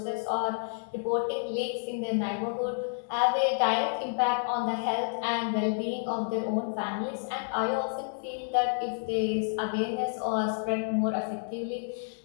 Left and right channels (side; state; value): right; silent; digital silence